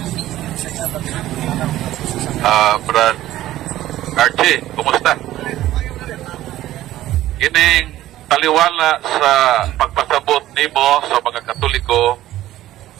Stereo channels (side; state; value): left; quieter; 14.3 dB